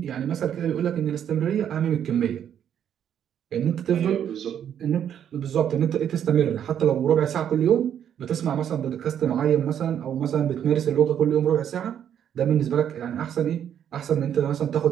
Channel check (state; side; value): quieter; left; 9.3 dB